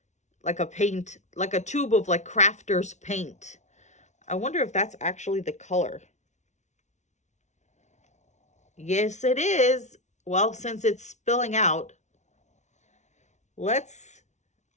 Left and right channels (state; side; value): late; right; 0.33 ms